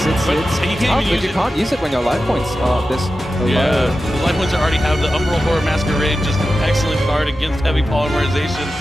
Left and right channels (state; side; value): normal; both; correlation 0.93